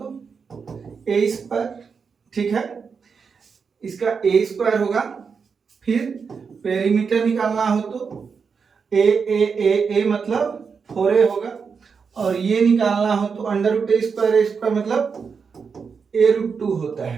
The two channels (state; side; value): quieter; left; 5.7 dB